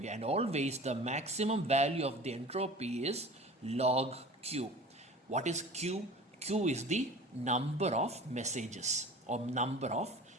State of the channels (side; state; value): both; normal; correlation 0.41